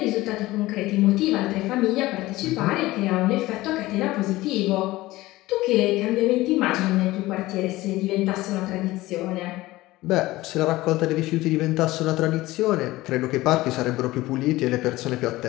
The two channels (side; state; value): right; quieter; 18.3 dB